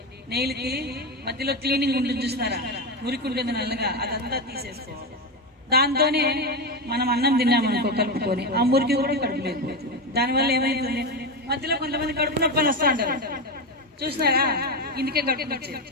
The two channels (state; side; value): normal; both; correlation 0.14